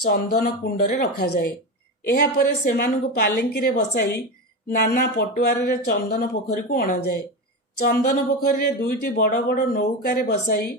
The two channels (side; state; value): both; normal; correlation 0.19